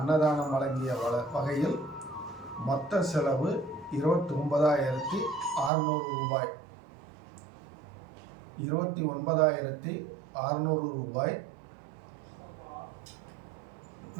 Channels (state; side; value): drops out; left; at 5.7 s